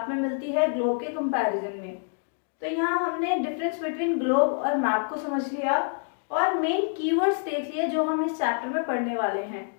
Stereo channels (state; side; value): silent; right; 60 dB below the other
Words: में मिलती है ग्लोब के कंपैरिजन में। तो यहाँ हमने डिफरेंस बिटवीन ग्लोब और मैप को समझ लिया और मेन कीवर्ड्स देख लिए जो हम इस चैप्टर में पढ़ने वाले हैं।